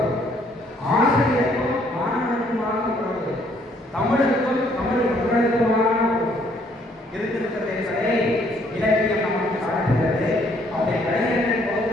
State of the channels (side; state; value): both; normal; correlation 0.65